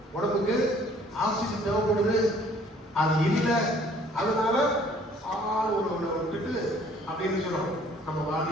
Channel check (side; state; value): both; normal; correlation 0.57